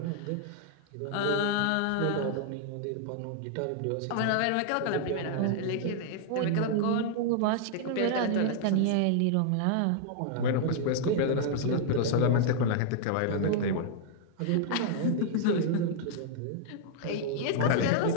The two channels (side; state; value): both; different; correlation -0.01